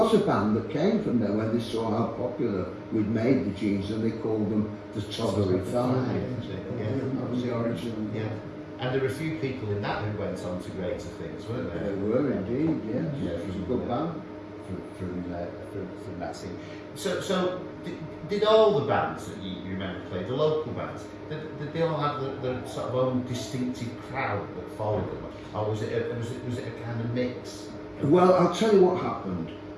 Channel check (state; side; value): identical; both; correlation 1.00